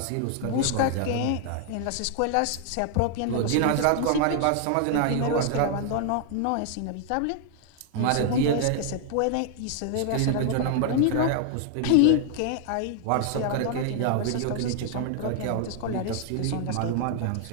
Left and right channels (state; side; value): different; both; correlation 0.00